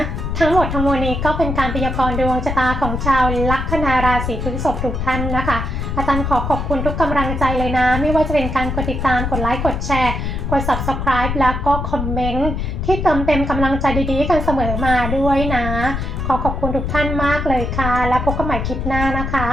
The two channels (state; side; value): noise; left; rumble, 3 dB below the sound